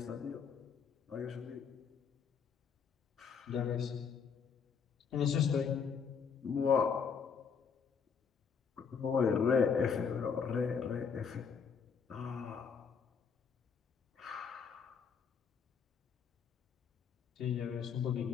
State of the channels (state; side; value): quieter; right; 6.3 dB